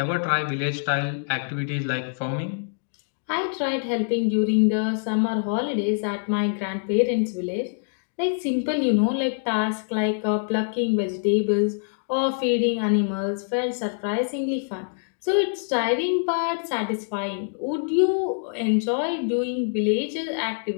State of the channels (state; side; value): silent; right; digital silence